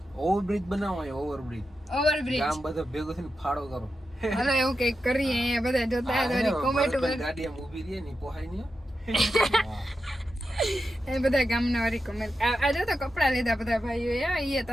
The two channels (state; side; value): normal; both; correlation 0.89